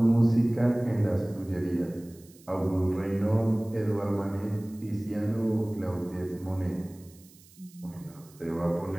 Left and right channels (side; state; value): right; noise; hiss, 25 dB below the sound